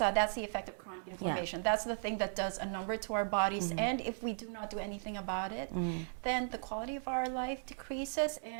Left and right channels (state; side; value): silent; left; digital silence